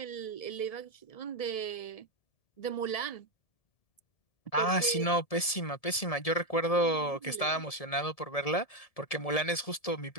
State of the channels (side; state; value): right; late; 1.7 ms